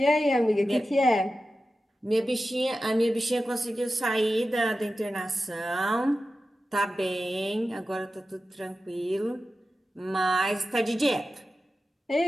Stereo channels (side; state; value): both; normal; correlation 0.93